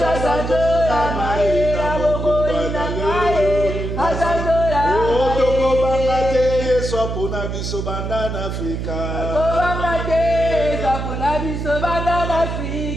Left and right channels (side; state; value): right; noise; hum, 4 dB below the sound